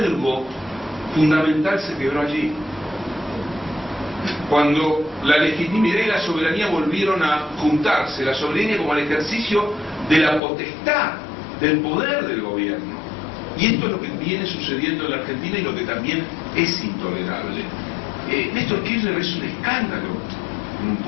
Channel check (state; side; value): drops out; right; at 10.4 s